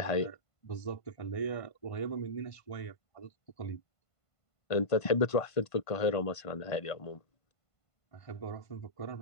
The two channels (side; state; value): right; late; 1.5 ms